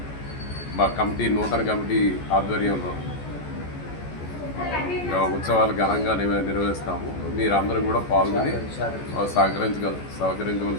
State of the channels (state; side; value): late; right; 14 ms